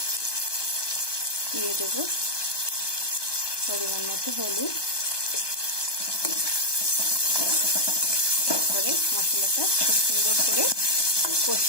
পরিমাণ মতো হলুদ। তারপরে মশলাটা খুব সুন্দর করে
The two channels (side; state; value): right; late; 1.2 ms